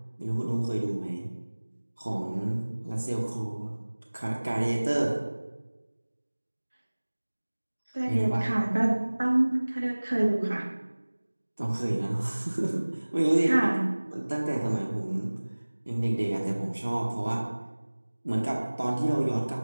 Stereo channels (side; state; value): both; inverted; correlation -1.00